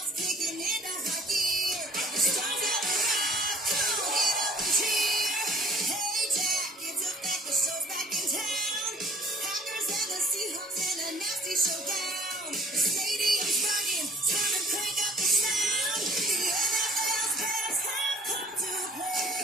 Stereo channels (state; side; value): normal; both; correlation 0.52